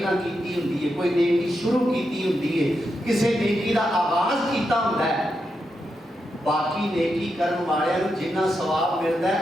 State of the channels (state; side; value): normal; both; correlation 0.85